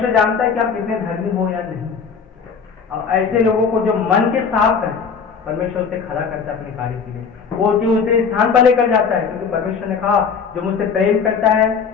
जानता है कि आप कितने धर्मी हो या नहीं। और ऐसे लोगों को जो मन के साफ है, परमेश्वर से खड़ा करता है अपने कार्य के लिए, वो जो उसे स्थान पर लेकर जाता है, क्योंकि परमेश्वर ने कहा जो मुझसे प्रेम करता है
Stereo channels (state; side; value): quieter; right; 6.0 dB